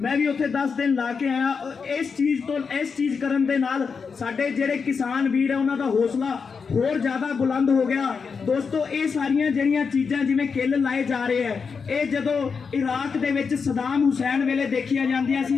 ਮੈਂ ਵੀ ਉੱਥੇ 10 ਦਿਨ ਲਾ ਕੇ ਆਇਆ ਇਸ ਚੀਜ਼ ਕਰਨ ਦੇ ਨਾਲ ਸਾਡੇ ਜਿਹੜੇ ਕਿਸਾਨ ਵੀਰ ਆ ਉਹਨਾਂ ਦਾ ਹੌਸਲਾ ਹੋਰ ਜ਼ਿਆਦਾ ਬੁਲੰਦ ਹੋ ਗਿਆ ਦੋਸਤੋ ਇਹ ਸਾਰੀਆਂ ਜਿਹੜੀਆਂ ਚੀਜ਼ਾਂ ਜਿਵੇਂ ਕਿੱਲ ਲਾਏ ਜਾ ਰਹੇ ਆ ਇਹ ਜਦੋਂ ਇਰਾਕ ਦੇ ਵਿੱਚ ਸਦਾਮ ਹੁਸੈਨ ਵੇਲੇ ਦੇਖੀਆਂ ਜਾਂਦੀਆਂ ਸੀ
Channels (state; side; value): quieter; right; 5.5 dB